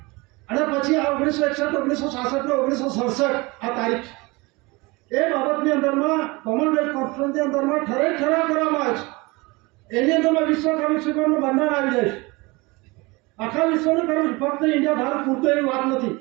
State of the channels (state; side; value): quieter; left; 24.5 dB